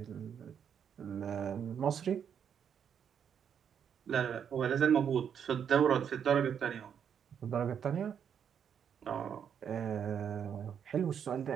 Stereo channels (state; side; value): quieter; left; 8.0 dB